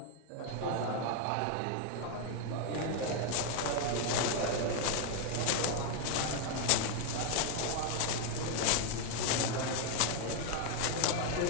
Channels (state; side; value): different; both; correlation 0.01